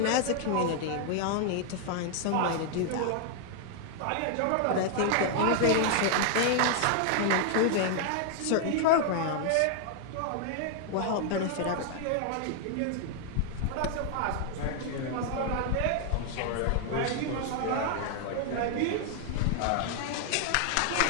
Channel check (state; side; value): different; both; correlation 0.00